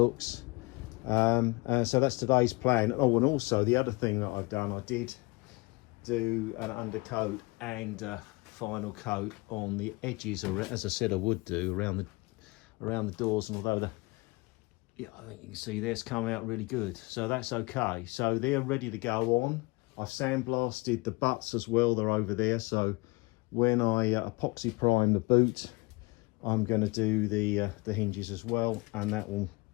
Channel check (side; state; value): right; quieter; 25.6 dB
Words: So that's today's plan. Oh, and also the other thing that I've done, I did do an undercoat and final coat on the edges, as I said I would do, around the doors. And although I think you can see this come out really good, so that's okay. So they're ready to go on. I've sandblasted the butts as well, they're over there. So when I epoxy prime the boot, I'm going to do the hinges as well, and that will